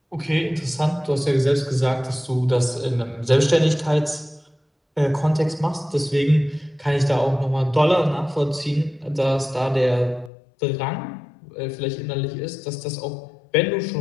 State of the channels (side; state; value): right; drops out; at 10.3 s